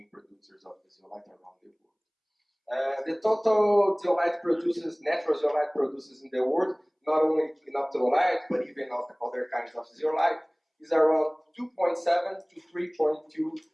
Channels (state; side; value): identical; both; correlation 1.00